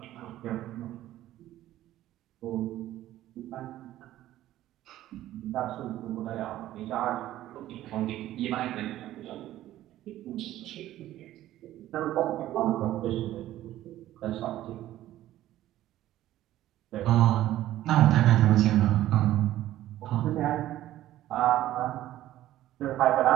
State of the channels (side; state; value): left; quieter; 14.0 dB